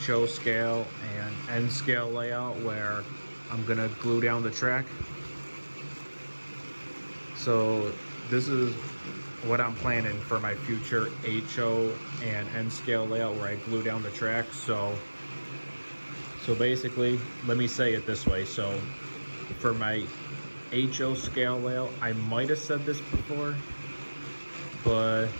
scale and N scale layout, where I'm gonna glue down the track. So this is what I'm planning for my future HO and N scale layout, where I glue down the track. So basically, let me say it this way. So for my HO scale layout, I might have said this before, but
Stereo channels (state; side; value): inverted; both; correlation -1.00